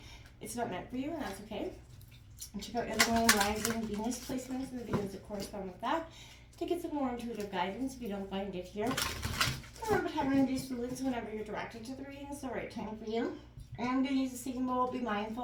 It's not meant for you, and that's okay. And check out your moon, rising, Venus placements, and the videos that correspond with that to get some more intuitive guidance if you don't find it here. Remember, time and induce fluids whenever you're directed to the reading is the right time for you. I'm going to use a singing bowl. Be mindful.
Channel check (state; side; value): identical; both; correlation 1.00